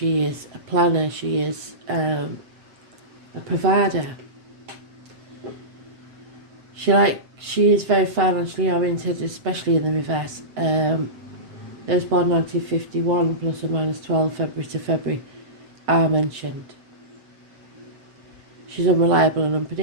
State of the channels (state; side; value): late; left; 7.7 ms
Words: is a planner, she is a provider. She is very financially oriented, especially in the reverse. Those born 1951 plus or minus 12 February to February are mentioned. She's unreliable and